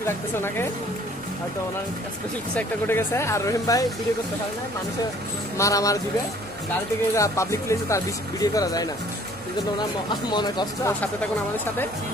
লাগতেছে ওনাকে, হয়তো ওনার স্পেশাল কিছু একটা ঘটে গেছে। আর রহিম ভাই ভিডিও করতে পারে না, মানুষের মারামার দিবে, গাড়ি থেকে পাবলিক প্লেসে তার ভিডিও করা যায় না, এই জন্য ওনার মনে কষ্ট। সাথে থাকুন আমাদের সাথে,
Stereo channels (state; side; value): normal; both; correlation 0.56